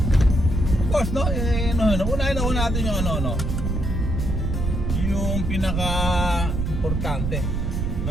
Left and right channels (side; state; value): right; noise; rumble, 1 dB below the sound